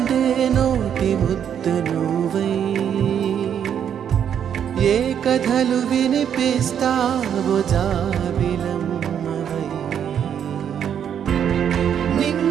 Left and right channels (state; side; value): quieter; left; 8.7 dB